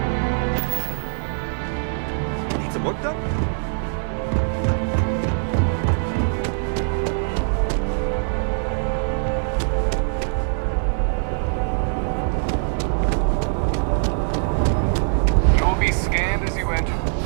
Need some work done? You'll be scanned as you enter the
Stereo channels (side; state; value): left; silent; digital silence